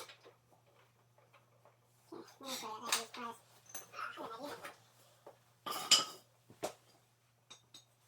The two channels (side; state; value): both; identical; correlation 1.00